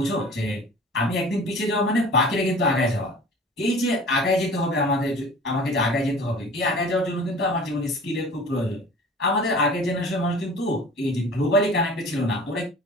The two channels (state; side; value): normal; both; correlation 0.43